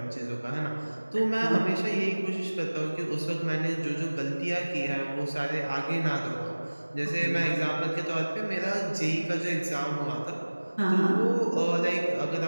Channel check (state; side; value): inverted; both; correlation -1.00